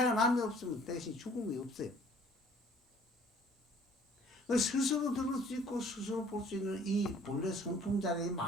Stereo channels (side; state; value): both; normal; correlation 0.55